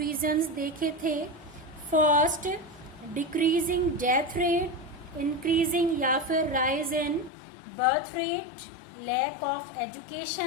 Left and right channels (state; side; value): drops out; right; at 7.3 s